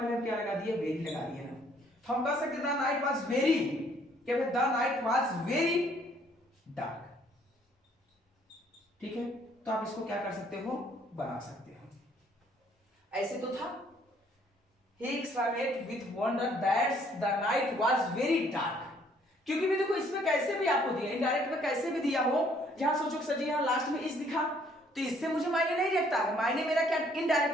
हम क्या लगा दिए, वेरी लगा दिए ना। तो हम कह सकते द नाइट वाज वेरी, क्या the night was very dark. ठीक है, तो आप इसको क्या कर सकते हो, बना सकते हो। ऐसे तो था, he exclaimed with wonder that the night was very dark। क्योंकि भी देखो इसमें कैसे भी आपको दिया, इनडायरेक्ट में कैसे भी दिया हो, जहां सोचो कि सर जी यहाँ लास्ट में इस दिखा तो इससे मुझे मायने नहीं रखता है। मायने मेरा क्या,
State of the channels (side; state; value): both; normal; correlation 0.63